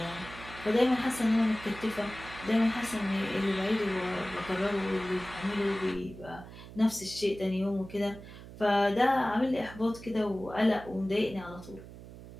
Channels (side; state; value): right; noise; hum, 15 dB below the sound